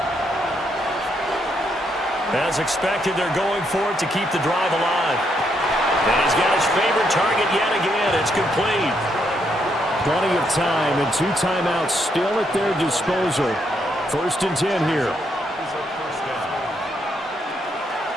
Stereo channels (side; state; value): both; normal; correlation 0.76